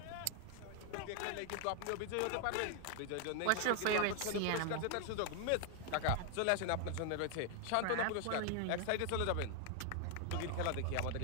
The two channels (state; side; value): different; both; correlation 0.00